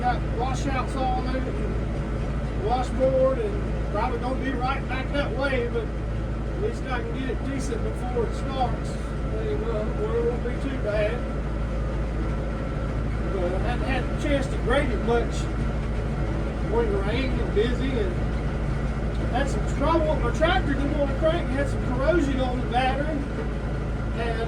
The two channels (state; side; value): identical; both; correlation 1.00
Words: washouts all over it, and washboard, and probably gonna be right back that way, but at least I can get it decent before it starts. Where it won't be too bad. But I hadn't had a chance to grade it much when the rain and busy, and had some trouble with my tractor. Didn't want to crank. Had some corrosion on the battery,